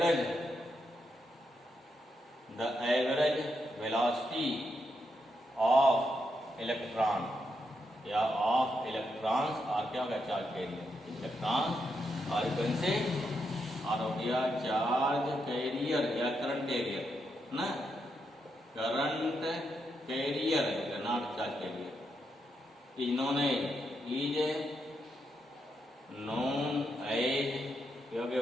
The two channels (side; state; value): both; normal; correlation 0.82